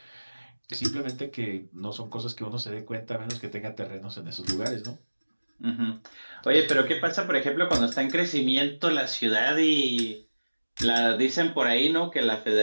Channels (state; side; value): inverted; both; correlation -1.00